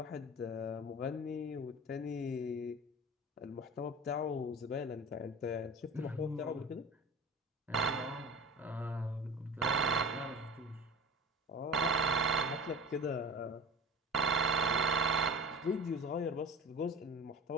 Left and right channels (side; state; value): both; normal; correlation 0.34